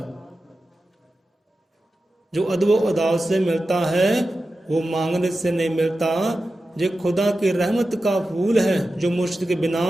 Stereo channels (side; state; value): both; normal; correlation 0.93